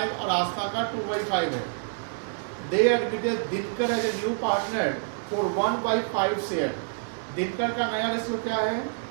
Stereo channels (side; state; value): left; silent; digital silence